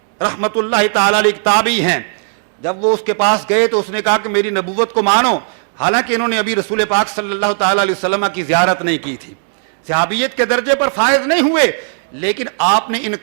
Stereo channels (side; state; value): left; silent; 67 dB below the other